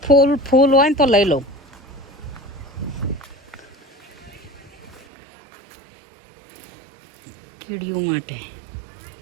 ફૂલ હોય ને તો લઈ લઉં કીડીઓ માટે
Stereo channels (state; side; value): drops out; left; at 5.1 s